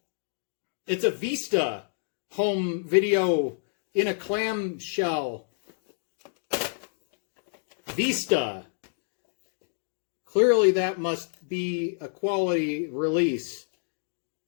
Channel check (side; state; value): right; silent; digital silence